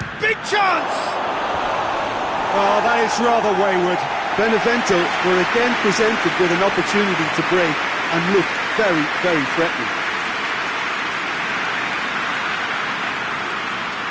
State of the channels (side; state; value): both; identical; correlation 1.00